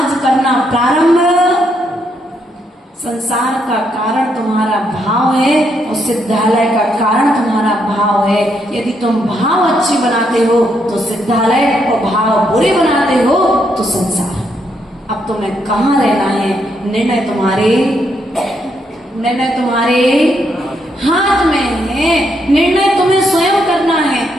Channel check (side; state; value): both; normal; correlation 0.76